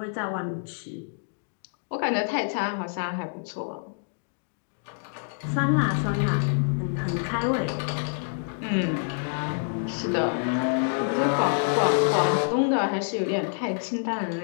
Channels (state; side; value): silent; right; digital silence